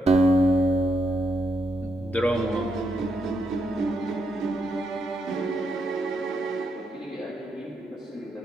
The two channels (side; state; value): both; normal; correlation 0.80